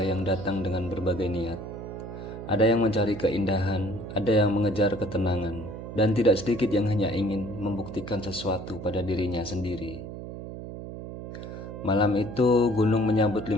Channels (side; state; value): right; noise; hum, 10 dB below the sound